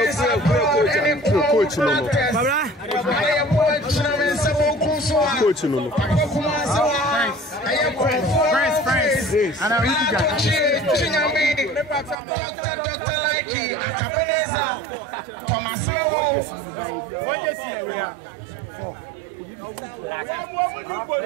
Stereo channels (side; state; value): left; drops out; at 12.2 s